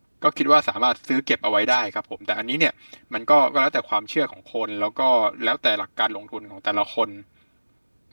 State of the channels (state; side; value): inverted; both; correlation -1.00